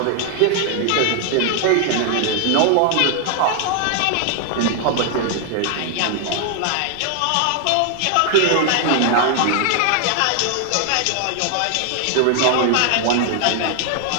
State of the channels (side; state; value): both; different; correlation 0.00